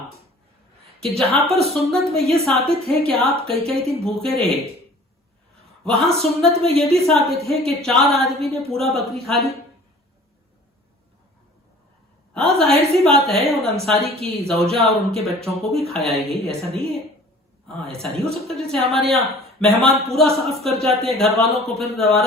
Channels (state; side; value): normal; both; correlation 0.48